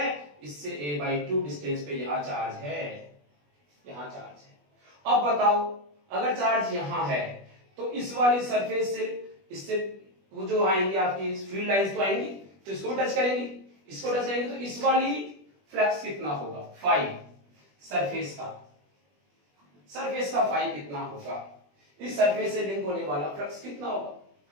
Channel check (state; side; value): late; left; 20 ms